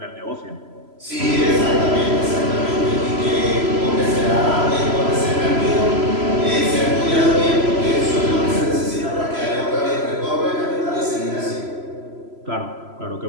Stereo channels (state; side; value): late; left; 3.0 ms